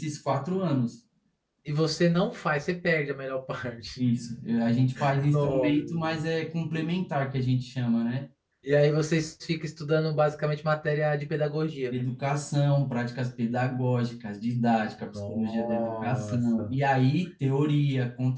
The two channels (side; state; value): both; identical; correlation 1.00